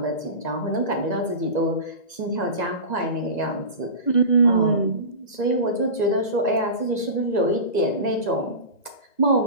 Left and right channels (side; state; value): right; late; 1.9 ms